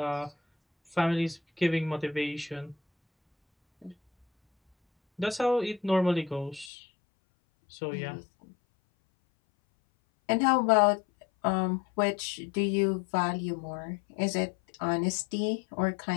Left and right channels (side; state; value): right; drops out; at 6.7 s